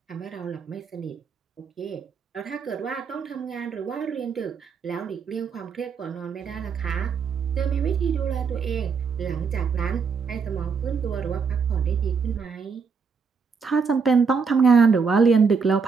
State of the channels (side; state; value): left; quieter; 5.5 dB